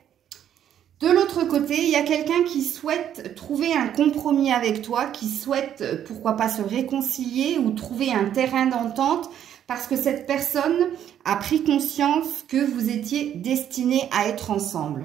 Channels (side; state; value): left; quieter; 10.1 dB